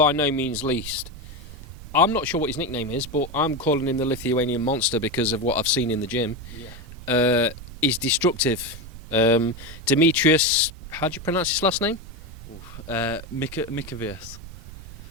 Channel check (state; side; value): noise; right; rumble, 14 dB below the sound